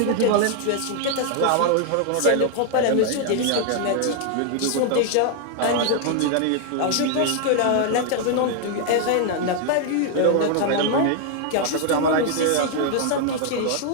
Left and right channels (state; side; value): different; both; correlation 0.00